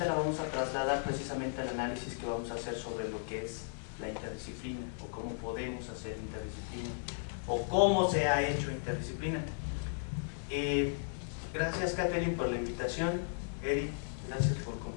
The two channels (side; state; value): right; silent; digital silence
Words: la vamos a trasladar precisamente al análisis que vamos a hacer sobre lo que es la interdisciplina, o cómo podemos hacer interdisciplina, o cómo se ha hecho interdisciplina. Gracias, Catherine, por la invitación. Eric, gracias por